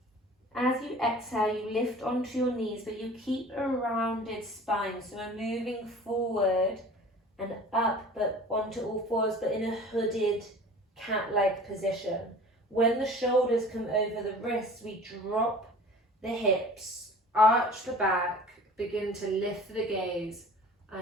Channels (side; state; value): both; normal; correlation 0.44